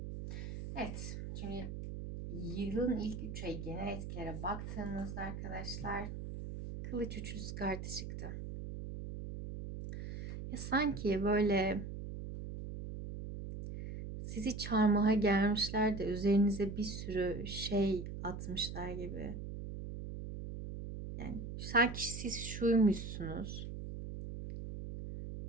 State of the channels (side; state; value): right; noise; hum, 7 dB below the sound